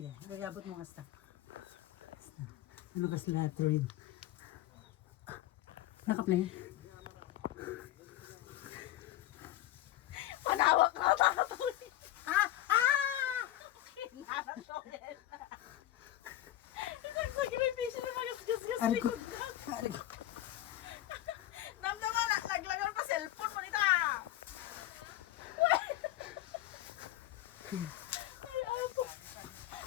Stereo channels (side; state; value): right; quieter; 14.1 dB